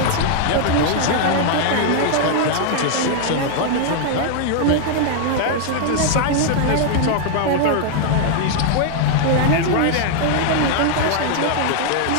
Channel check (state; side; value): different; both; correlation 0.00